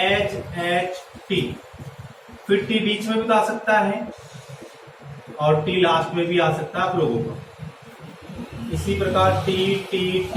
एच टी, फिर टी बीच में भी तो आ सकता है, और टी लास्ट में भी आ सकता है आप लोगों को। इसी प्रकार T T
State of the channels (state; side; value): identical; both; correlation 1.00